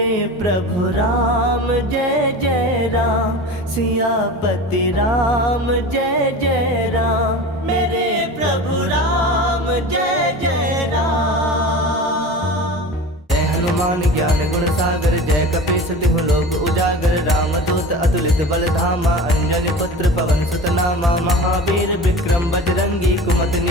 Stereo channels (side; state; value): both; normal; correlation 0.33